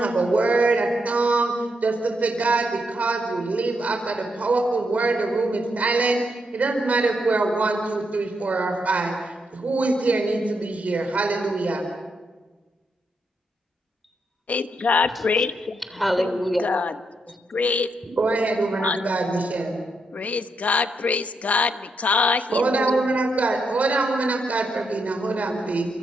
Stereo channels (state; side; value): normal; both; correlation 0.80